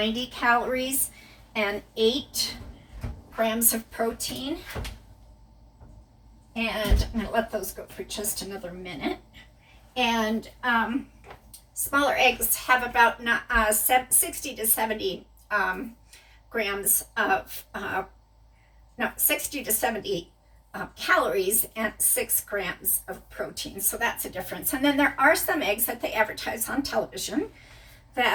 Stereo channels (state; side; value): identical; both; correlation 1.00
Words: calories and 8 grams of protein. And I'm going to let those go for just another minute. And smaller eggs have about 60 to 70 grams of, 60 to 70 calories and 6 grams of protein. So that's a difference. And then there are some eggs that they advertise on television